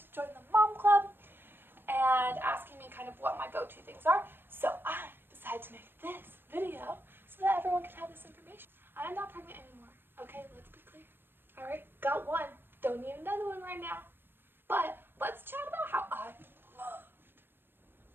join the mom club and asking me kind of what my go-to things are. So I decided to make this video so that everyone can have this information. I am not pregnant anymore. Okay, let's be clear. Alright, got one. Don't need another one right now. But let's chat about how I loved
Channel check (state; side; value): late; left; 0.10 ms